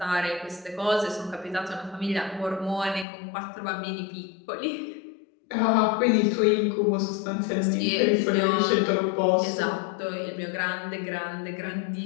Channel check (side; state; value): right; drops out; at 3.1 s